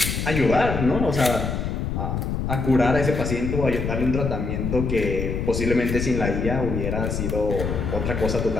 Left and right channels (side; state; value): left; noise; rumble, 2 dB below the sound